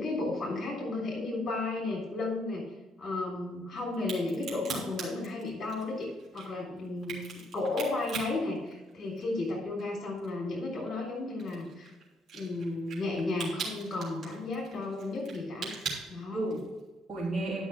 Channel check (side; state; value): both; normal; correlation 0.71